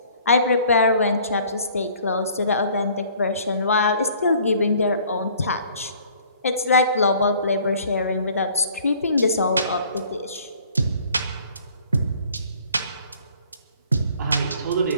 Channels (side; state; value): both; inverted; correlation -0.55